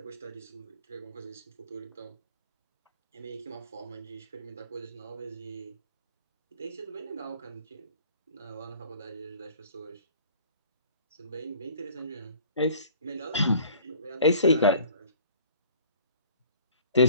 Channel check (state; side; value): inverted; both; correlation -0.50